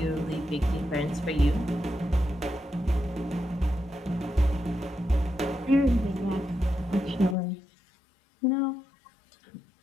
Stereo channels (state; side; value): drops out; right; at 7.4 s